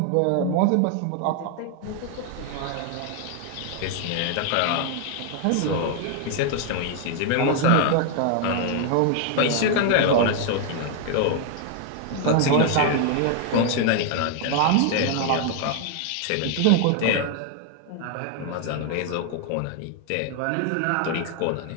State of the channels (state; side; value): different; both; correlation 0.00